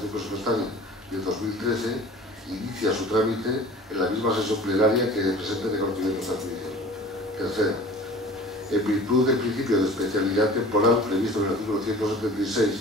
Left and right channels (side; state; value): both; normal; correlation 0.43